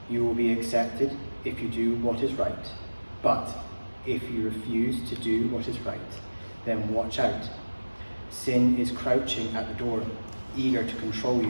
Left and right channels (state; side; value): inverted; both; correlation -1.00